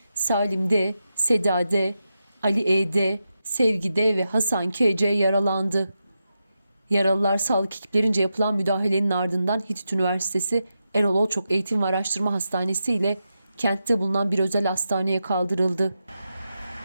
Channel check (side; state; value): both; inverted; correlation -0.88